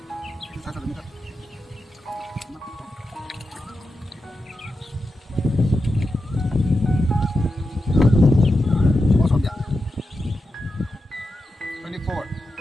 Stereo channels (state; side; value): normal; both; correlation 0.89